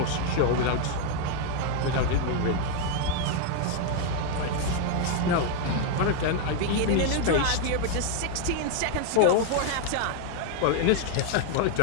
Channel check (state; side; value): different; both; correlation 0.00